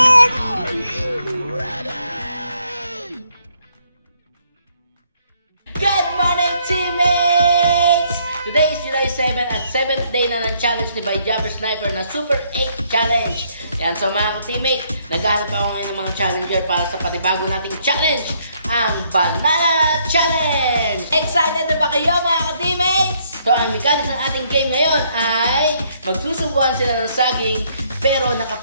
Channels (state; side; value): inverted; both; correlation -0.69